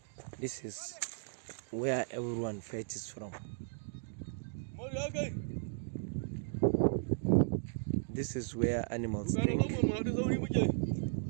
this is where everyone fetches from. This is where animals drink.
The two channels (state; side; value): silent; left; digital silence